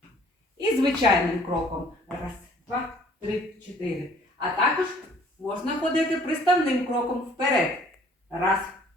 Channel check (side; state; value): both; normal; correlation 0.57